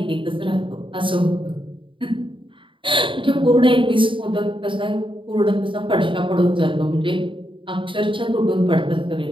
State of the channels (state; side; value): late; left; 0.25 ms